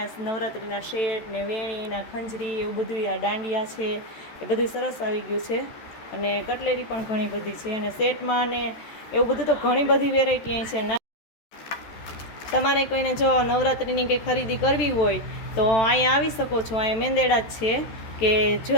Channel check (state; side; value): late; right; 14 ms